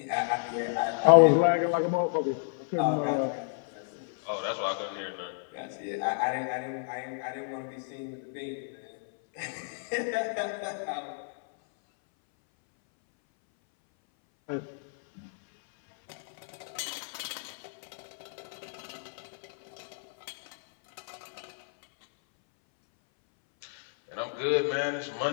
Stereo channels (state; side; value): silent; right; 57 dB below the other